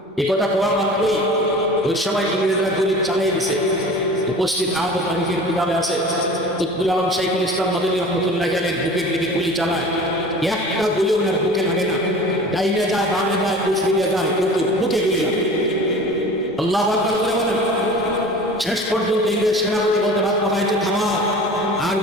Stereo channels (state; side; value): normal; both; correlation 0.40